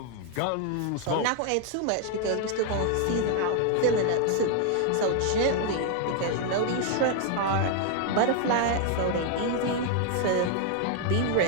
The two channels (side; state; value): both; different; correlation 0.00